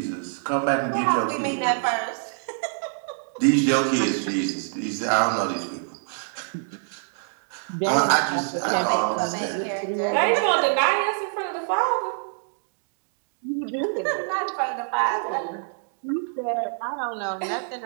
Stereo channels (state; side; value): silent; left; 61 dB below the other